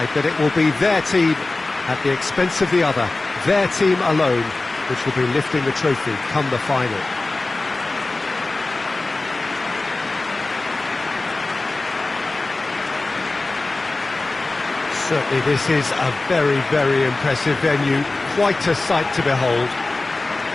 that it will be their team at the expense of the other, their team alone, which will be lifting the trophy come the final. Certainly this is a very, very impressive venue, quite a sight to behold.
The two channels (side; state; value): right; quieter; 3.2 dB